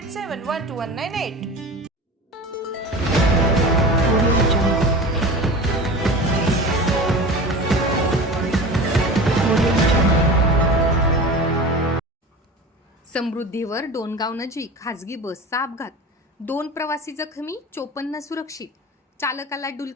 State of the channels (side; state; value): both; normal; correlation 0.33